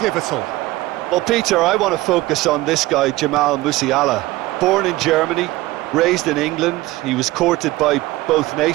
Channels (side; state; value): left; quieter; 18.4 dB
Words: Well, Peter, I want to focus on this guy, Jamal Musiala. Born in Germany, raised in England. He was courted by both